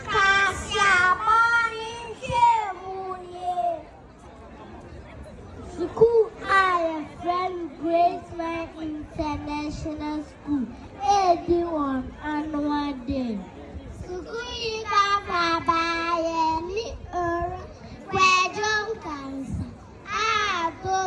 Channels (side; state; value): both; identical; correlation 1.00